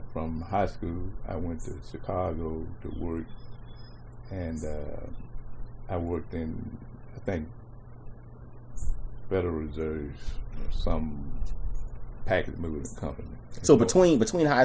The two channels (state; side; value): identical; both; correlation 1.00